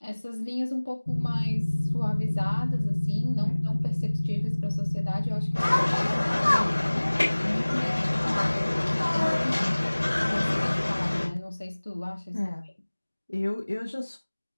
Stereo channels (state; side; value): inverted; both; correlation -1.00